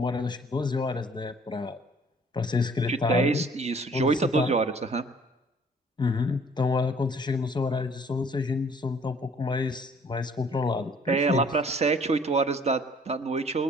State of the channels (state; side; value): normal; both; correlation 0.56